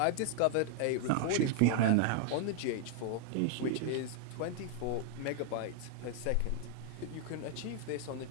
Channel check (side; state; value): both; different; correlation 0.00